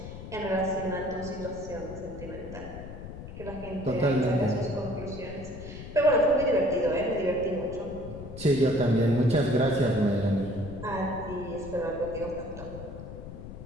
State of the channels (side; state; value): left; noise; rumble, 11 dB below the sound